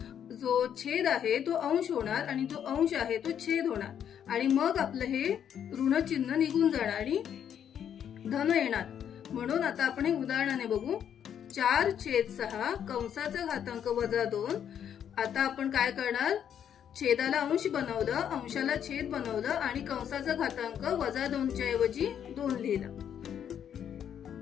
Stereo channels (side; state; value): right; quieter; 9.0 dB